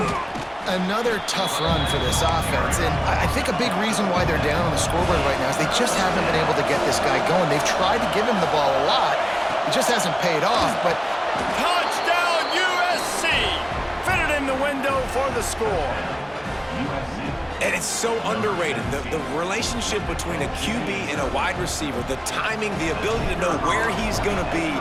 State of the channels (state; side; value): identical; both; correlation 1.00